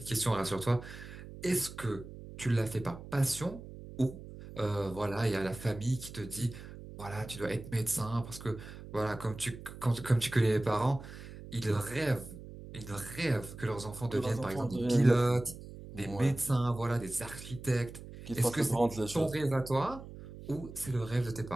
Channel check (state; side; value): noise; right; hum, 14 dB below the sound